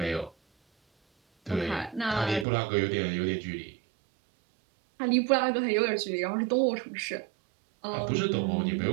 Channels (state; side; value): drops out; left; at 2.5 s